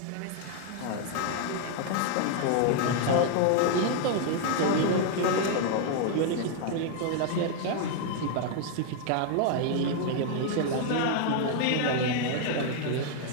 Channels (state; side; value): different; both; correlation 0.00